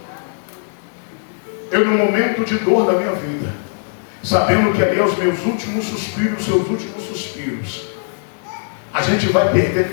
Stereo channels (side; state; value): right; silent; digital silence